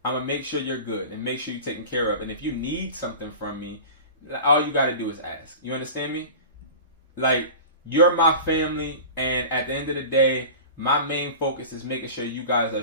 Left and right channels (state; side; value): inverted; both; correlation -0.36